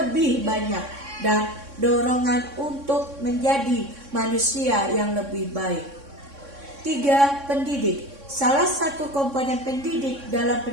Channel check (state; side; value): late; left; 3.6 ms